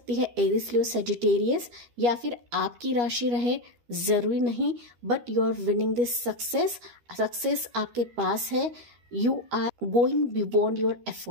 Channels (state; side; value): late; left; 13 ms